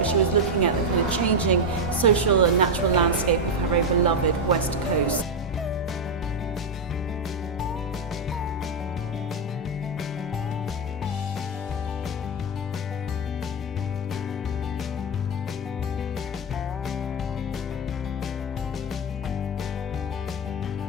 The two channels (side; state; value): both; normal; correlation 0.05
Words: she was looking at the kind of changing social and natural landscape of her very beloved West Coast.